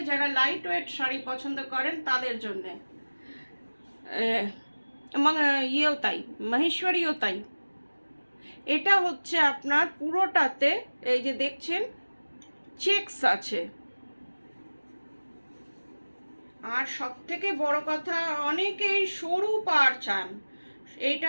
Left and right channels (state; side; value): inverted; both; correlation -1.00